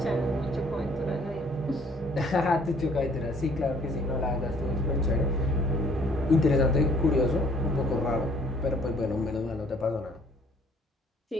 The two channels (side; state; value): both; normal; correlation 0.59